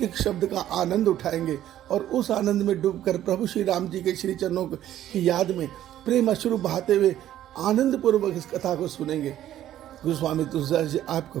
एक शब्द का आनंद उठाएंगे और उस आनंद में डूबकर प्रभु श्री राम जी के श्री चरणों की याद में प्रेम अश्रु बहाते हुए आनंद पूर्वक इस कथा को सुनेंगे। गोस्वामी तुलसीदास जी आपको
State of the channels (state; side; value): quieter; left; 12.3 dB